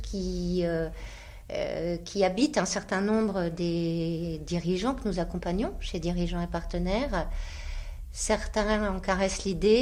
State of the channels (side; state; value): both; identical; correlation 1.00